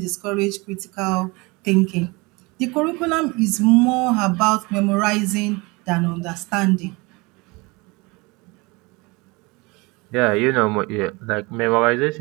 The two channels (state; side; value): quieter; left; 25.6 dB